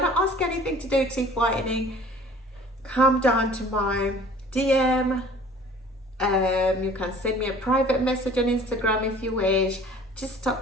to ask anything to do with teeth whitening, come down to my DM. You can send me a private message on Instagram if you wish. Just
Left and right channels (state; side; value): normal; both; correlation 0.49